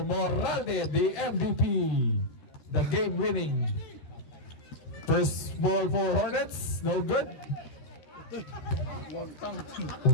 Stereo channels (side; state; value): right; late; 13 ms